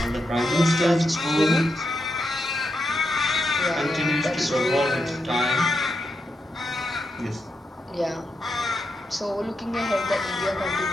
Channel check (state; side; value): normal; both; correlation 0.84